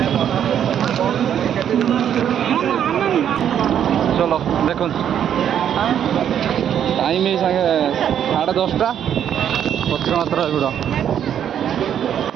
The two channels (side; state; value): left; quieter; 9.4 dB